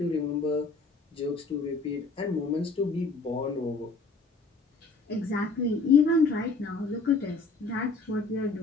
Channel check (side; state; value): right; quieter; 3.9 dB